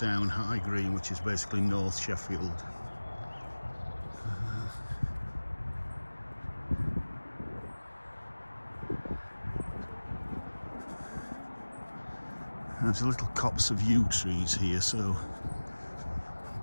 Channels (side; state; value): both; inverted; correlation -1.00